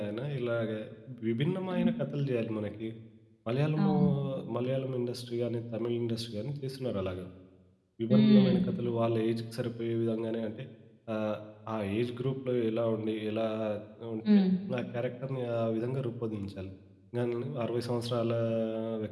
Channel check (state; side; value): identical; both; correlation 1.00